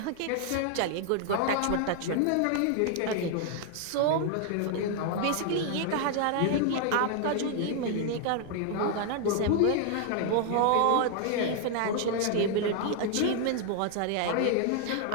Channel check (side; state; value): both; different; correlation 0.00